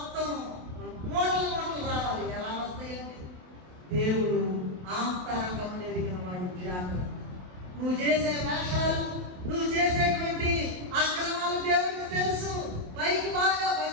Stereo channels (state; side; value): late; left; 28 ms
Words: మూటలు మూటలు రావాలి. ఎలా వస్తాయండి? దేవుడు ఆంతరంగం ఎరిగిన వాడు. జాగ్రత్త. నువ్వు చేసే వేషాలు, నువ్వు చేసేటువంటి అక్రమాలు దేవుడికి తెలుసు. పైకి బాగా